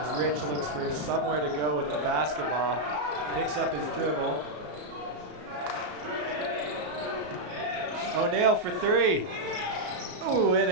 Rich looks for somewhere to go with the basketball, picks up his dribble. O'Neal for 3. Ooh, in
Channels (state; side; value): late; left; 34 ms